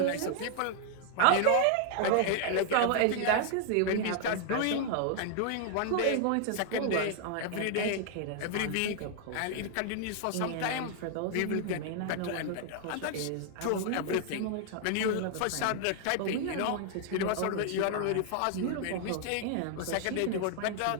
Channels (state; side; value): different; both; correlation 0.00